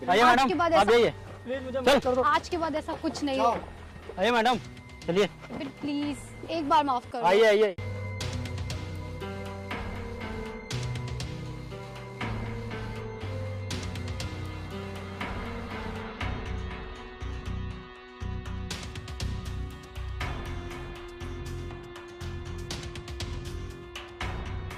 आइए आज के मैडम, बाद आप ऐसा, आइए। प्लीज मुझे माफ कर दो। आज के बाद ऐसा कुछ नहीं हो। आइए मैडम, चलिए। विपिन प्लीज एक बार माफ कर दो। आइए आइए।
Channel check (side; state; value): both; identical; correlation 1.00